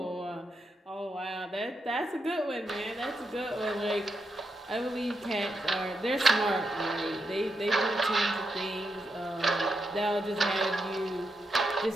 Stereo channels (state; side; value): normal; both; correlation 0.84